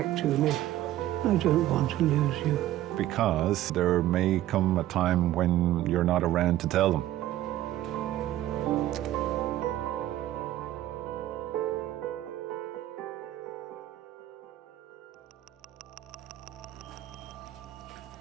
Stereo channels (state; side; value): quieter; left; 14.0 dB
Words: to me. I don't want to lose you. Because there may come a time when you're not around to tell them.